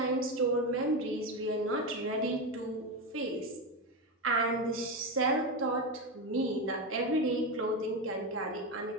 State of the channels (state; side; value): normal; both; correlation 0.14